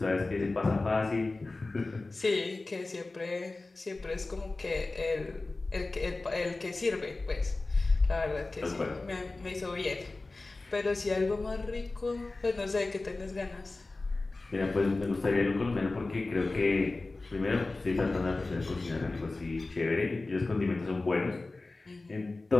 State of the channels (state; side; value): quieter; right; 3.3 dB